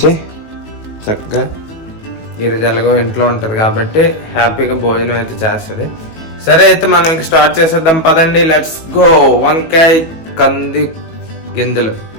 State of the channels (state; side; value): late; right; 19 ms